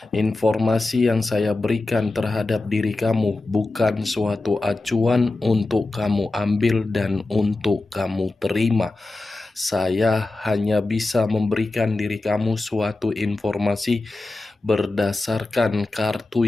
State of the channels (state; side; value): quieter; right; 3.1 dB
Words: informasi yang saya berikan terhadap diri kamu bukan suatu acuan untuk kamu ambil dan untuk kamu terima. Saya hanya bisa memberikan diri kamu suatu informasi berdasarkan kartu